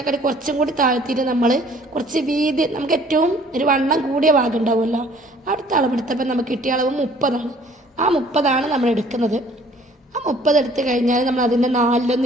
കുറച്ചും കൂടി താഴ്ത്തിയിട്ട് നമ്മൾ കുറച്ച് വീതി, നമുക്ക് ഏറ്റവും ഒരു വണ്ണം കൂടിയ ഭാഗം ഉണ്ടാവുമല്ലോ, അടുത്ത അളവെടുത്തപ്പോൾ നമുക്ക് കിട്ടിയ അളവ് 30ആണ്. ആ 30ആണ് നമ്മൾ എടുക്കുന്നത്. ആ 30 എടുത്ത് കഴിഞ്ഞാൽ നമ്മൾ അതിൻ്റെ 4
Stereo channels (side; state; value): both; normal; correlation 0.56